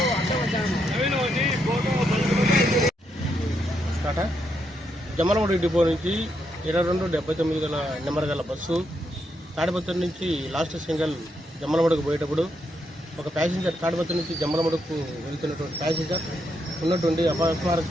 Jammalamadugu depot నుంచి 2279 గల నెంబర్ గల బస్సు తాడిపత్రి నుంచి లాస్ట్ సింగల్ జమ్మలమడుగు పోయేటప్పుడు ఒక ప్యాసింజర్ తాడిపత్రి నుంచి జమ్మలమడుగుకు వెళ్తున్నటువంటి ప్యాసింజర్ ఉన్నటువంటి అపస్మారక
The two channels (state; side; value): normal; both; correlation 0.79